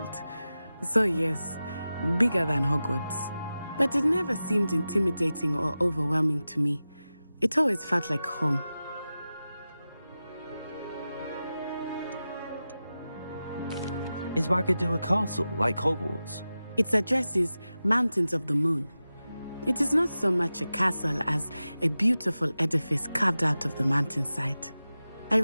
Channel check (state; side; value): inverted; both; correlation -0.94